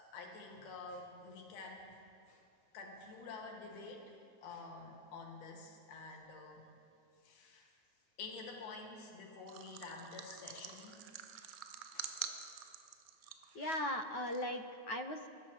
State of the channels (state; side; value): late; right; 9.3 ms